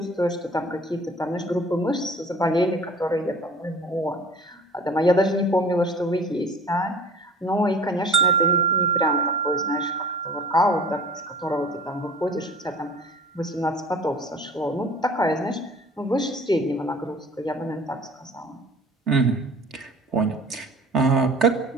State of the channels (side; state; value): both; normal; correlation 0.45